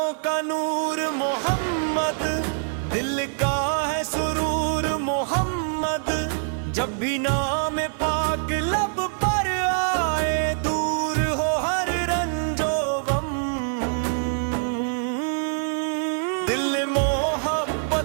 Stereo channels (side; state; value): left; silent; digital silence